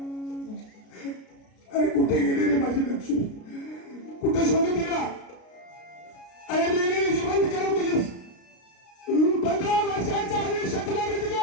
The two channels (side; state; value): right; late; 33 ms